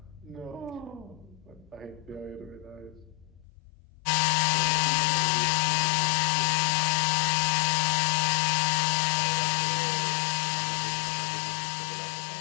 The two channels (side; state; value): right; drops out; at 3.5 s